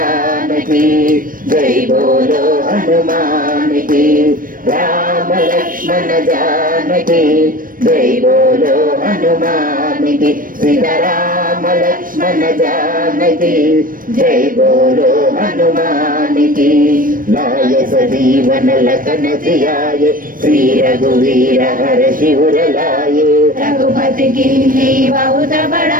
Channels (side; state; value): left; late; 0.40 ms